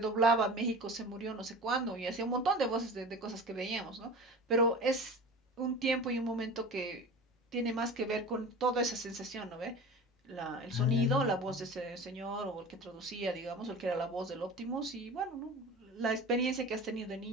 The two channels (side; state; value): both; normal; correlation 0.35